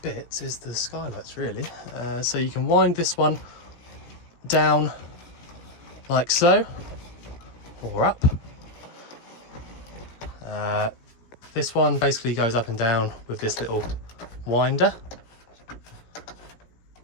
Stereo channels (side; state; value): right; late; 17 ms